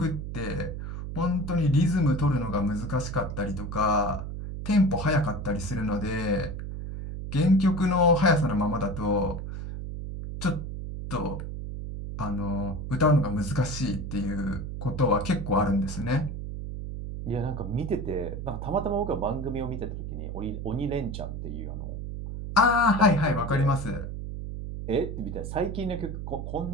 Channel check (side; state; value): right; noise; hum, 6 dB below the sound